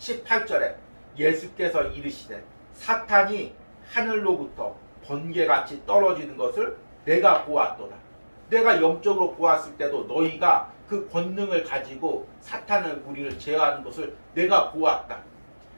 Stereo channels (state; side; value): inverted; both; correlation -1.00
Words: 예수께서 이르시되 사탄이 하늘로부터 번개같이 떨어지는 것을 내가 보았도다. 내가 영적으로 보았을 때도 너희가 그 권능을 가지고 사탄의 무리를 제어하는 것을 내가 보았다.